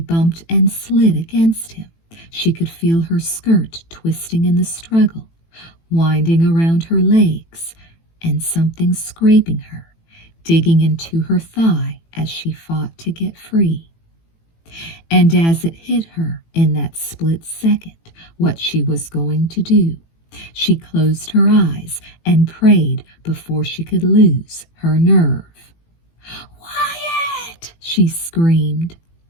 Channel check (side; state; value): right; late; 18 ms